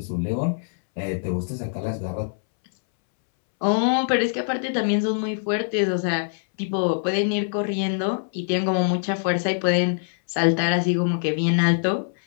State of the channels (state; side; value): silent; right; 63 dB below the other